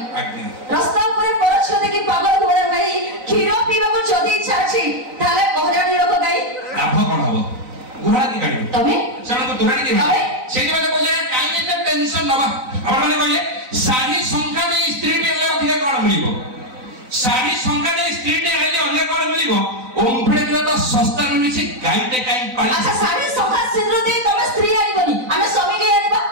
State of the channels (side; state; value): left; late; 4.0 ms